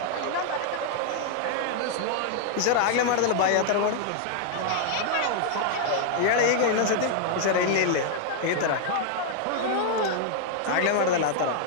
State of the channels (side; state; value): both; different; correlation -0.01